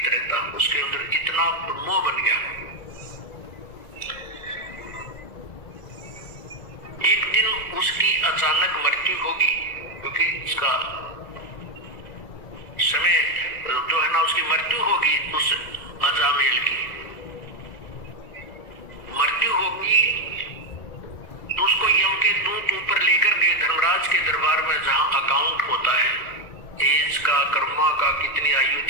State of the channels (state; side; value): late; right; 2.0 ms